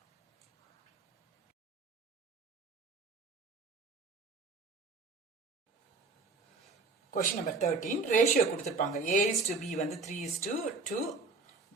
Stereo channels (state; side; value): quieter; left; 3.9 dB